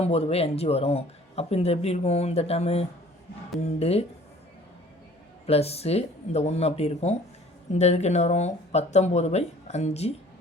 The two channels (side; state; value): both; normal; correlation 0.51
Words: வரும். அப்போ இந்த எப்படி இருக்கும் இந்த டேர்மு 2 ப்ளஸ்ஸு இந்த 1 அப்படி இருக்கும். இந்த இதுக்கு என்ன வரும் 19/5